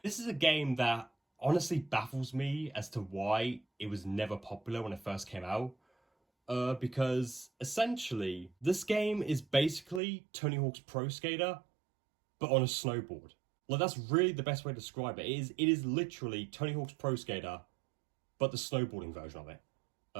This is a game that honestly baffles me as to why it was never popular when it first came out. Because essentially, this game is basically Tony Hawk's Pro Skater, but on a snowboard. Like, that's really the best way to describe it. It is literally Tony Hawk's Pro Skater, but the snowboarding version of it.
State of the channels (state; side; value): drops out; left; at 10.0 s